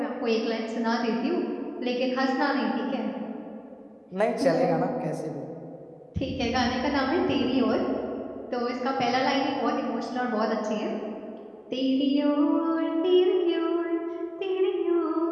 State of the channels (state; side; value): identical; both; correlation 1.00